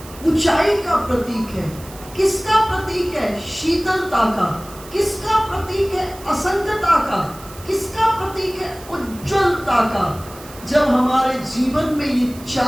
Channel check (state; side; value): noise; right; hiss, 19 dB below the sound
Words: ऊंचाई का प्रतीक है। किसका प्रतीक है? शीतलता का। किसका प्रतीक है? असंगता का। किसका प्रतीक है? उज्ज्वलता का। जब हमारे जीवन में ये